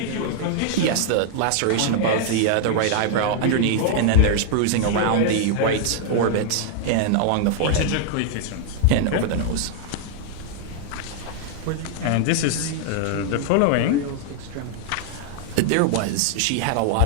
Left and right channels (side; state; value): both; different; correlation 0.00